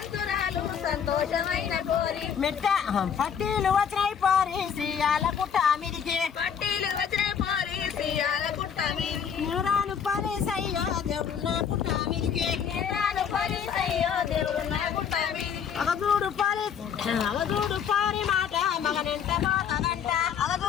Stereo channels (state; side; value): quieter; right; 7.6 dB